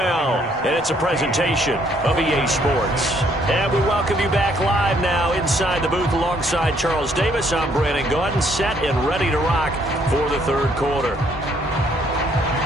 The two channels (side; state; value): both; normal; correlation 0.67